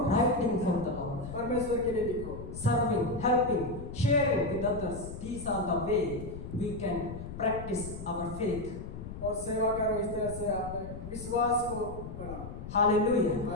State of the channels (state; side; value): noise; left; rumble, 10 dB below the sound